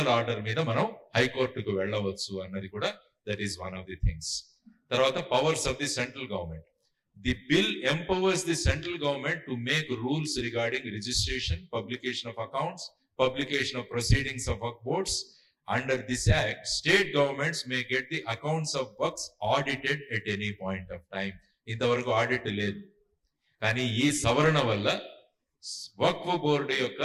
ఆర్డర్ మీద మనం హైకోర్టుకు వెళ్ళవచ్చు అన్నది కూడా that is one of the things. తర్వాత powers of the central government. The bill empowers the central government to make rules regarding registration, publication of accounts, publication of proceedings of work boards. Under this act, state governments may get the accounts of works audited at any point of time. ఇంతవరకు audit లేదు. కానీ ఈ సవరణ వల్ల వక్ఫ్ board యొక్క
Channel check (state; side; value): identical; both; correlation 1.00